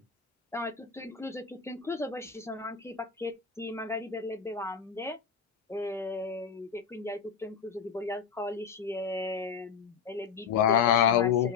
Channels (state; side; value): quieter; right; 6.7 dB